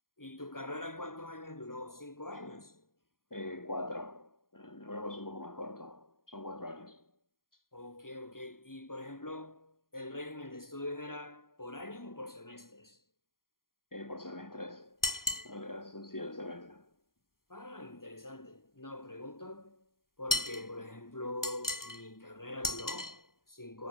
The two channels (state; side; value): late; right; 0.91 ms